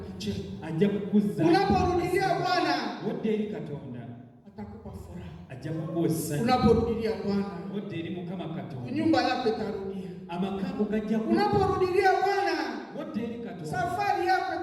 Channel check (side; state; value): both; identical; correlation 1.00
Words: Unaporudilia Bwana atakupa furaha. Unaporudilia Bwana nyumba yako itarudia. Unaporudilia Bwana safari yako